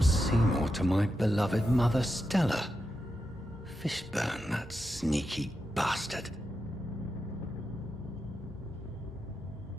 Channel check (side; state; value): both; normal; correlation 0.87